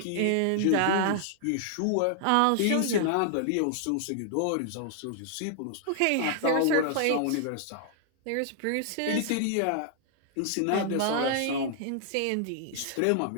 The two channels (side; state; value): both; different; correlation 0.00